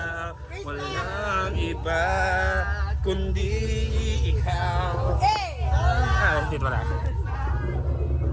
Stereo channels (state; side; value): identical; both; correlation 1.00